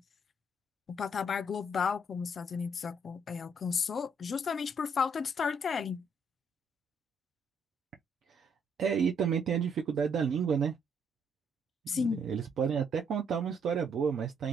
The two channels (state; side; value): normal; both; correlation 0.69